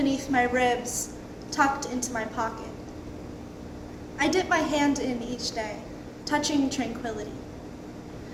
my ribs, tucked into my pocket. I dip my hand in each day, touching tranquility.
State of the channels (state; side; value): identical; both; correlation 1.00